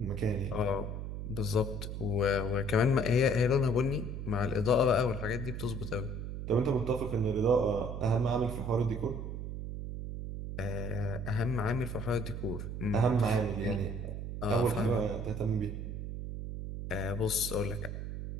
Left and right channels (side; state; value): right; noise; hum, 6 dB below the sound